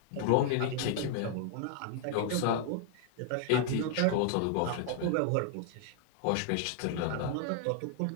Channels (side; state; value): both; different; correlation 0.00